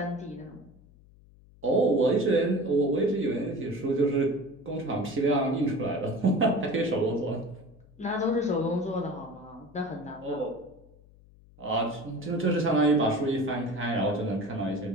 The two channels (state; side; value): noise; left; hum, 25 dB below the sound